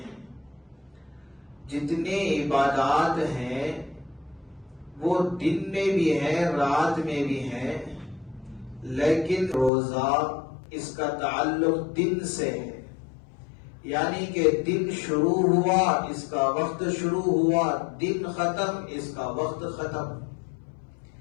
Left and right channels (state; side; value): drops out; right; at 9.7 s